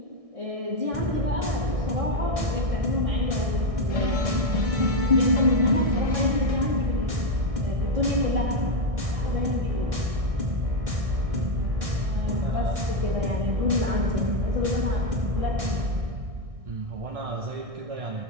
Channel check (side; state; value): left; late; 1.6 ms